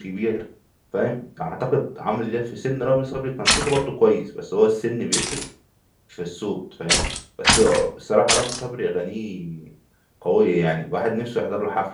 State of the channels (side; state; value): both; identical; correlation 1.00